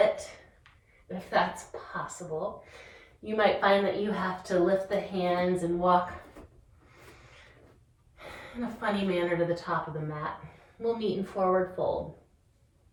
if that's possible. You might find that you have to lift the hands and walk in a funny manner to the top of the mat. We'll meet in forward fold.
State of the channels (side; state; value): both; identical; correlation 1.00